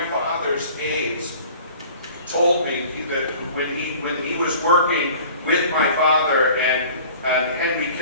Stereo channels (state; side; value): inverted; both; correlation -0.47